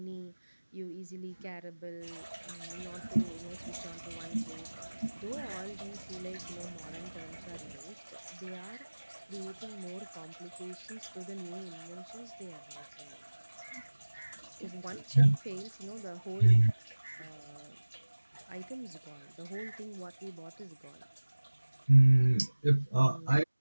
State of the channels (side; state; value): both; inverted; correlation -1.00